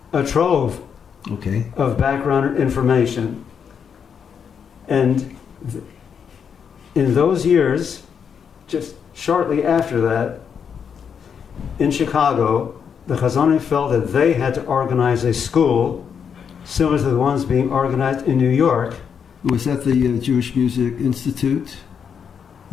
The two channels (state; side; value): quieter; right; 7.1 dB